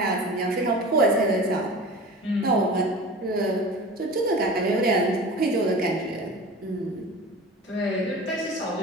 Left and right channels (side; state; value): both; normal; correlation 0.35